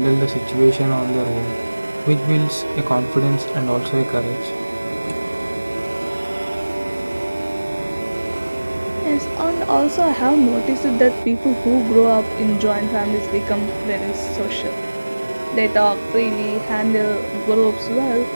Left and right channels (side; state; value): both; inverted; correlation -1.00